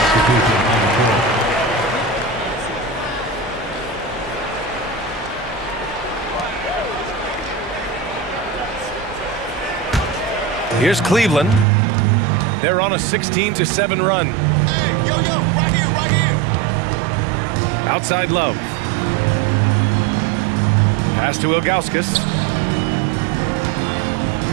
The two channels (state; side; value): drops out; left; at 11.7 s